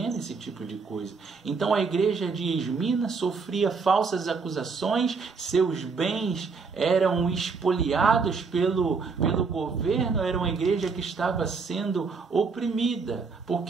esse tipo de coisa. Então a igreja de Esmirna sofria falsas acusações, seus bens eram espoliados pelo governo, era uma igreja que estava sendo oprimida,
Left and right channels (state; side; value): quieter; left; 4.9 dB